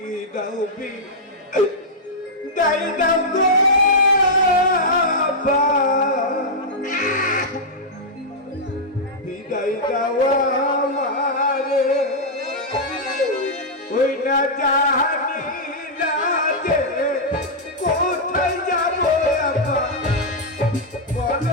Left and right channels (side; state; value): both; normal; correlation -0.07